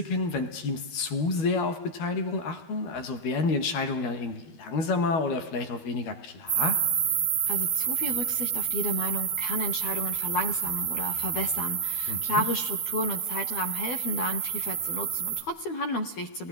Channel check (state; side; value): late; right; 12 ms